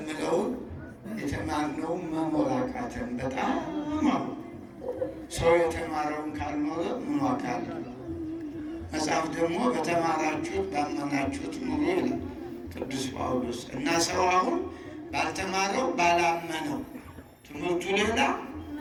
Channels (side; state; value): both; identical; correlation 1.00